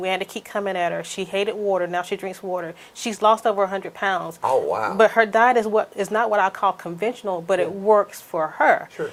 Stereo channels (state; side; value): identical; both; correlation 1.00